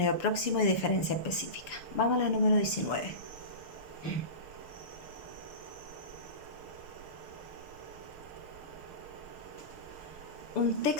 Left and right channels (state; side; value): late; right; 6.9 ms